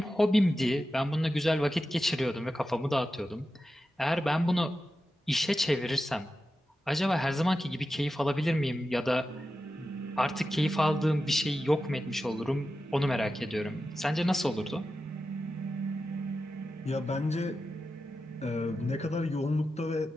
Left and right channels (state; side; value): normal; both; correlation 0.91